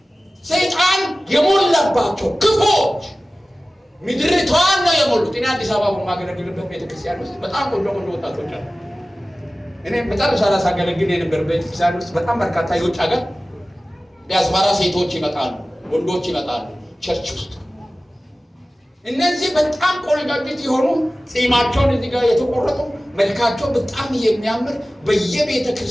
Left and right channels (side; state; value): both; normal; correlation 0.97